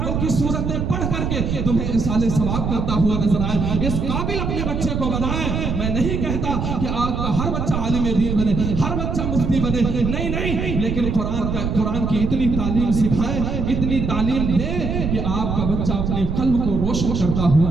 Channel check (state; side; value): noise; right; rumble, 2 dB below the sound